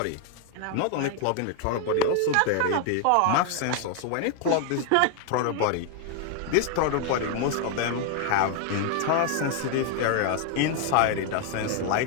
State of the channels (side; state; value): both; different; correlation 0.00